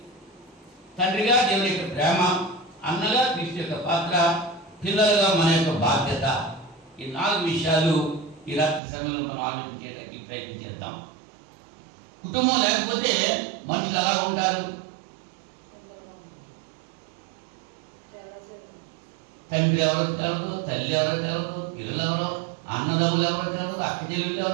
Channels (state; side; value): drops out; left; at 8.8 s